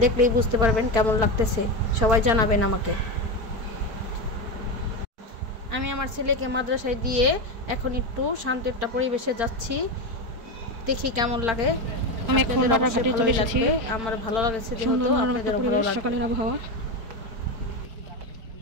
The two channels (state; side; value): late; left; 4.5 ms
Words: দেখলেই বুঝতে পারবেন কেমন লাগতেছে। সবাই জানাবেন আমাকে। আমি আমার ছেলেকে মাদ্রাসায় দিয়ে এখন একটু শান্ত একটা পরিবেশে যাচ্ছি, দেখি কেমন লাগে। আমি এখন বাররা ঘাটে চলে এসেছি। আমার ভালো লাগছে, সুন্দর মনোরম একটা পরিবেশ, সকালের আবহাওয়া।